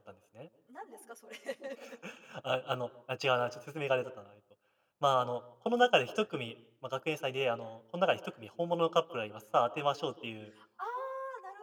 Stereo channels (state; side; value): identical; both; correlation 1.00